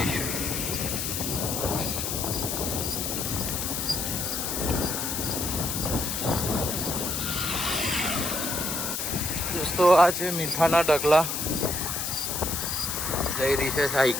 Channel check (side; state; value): left; noise; hiss, 2 dB below the sound